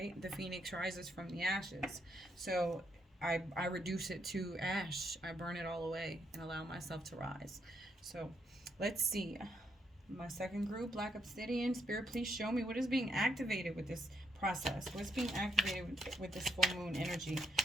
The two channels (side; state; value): both; normal; correlation 0.75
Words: The phoenix rises from the ashes. So I reduce it to ash. I burn it all away and allow myself to rise. So let's see. My second group, Black Obsidian. Spirit, please show me what is being activated with this process. What's being activated with this full moon energy